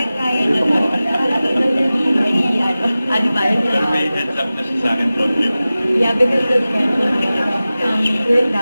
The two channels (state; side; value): inverted; both; correlation -0.97